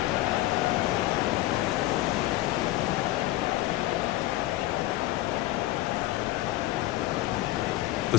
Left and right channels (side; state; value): right; quieter; 16.5 dB